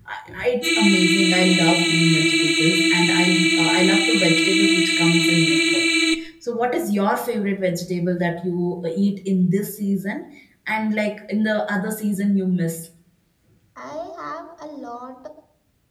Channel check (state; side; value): identical; both; correlation 1.00